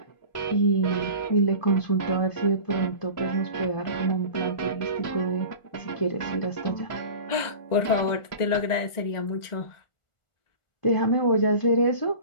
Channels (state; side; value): late; right; 1.4 ms